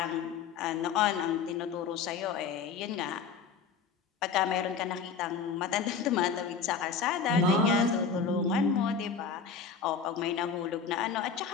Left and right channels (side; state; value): right; quieter; 5.9 dB